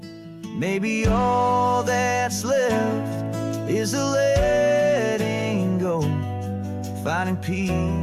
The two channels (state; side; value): identical; both; correlation 1.00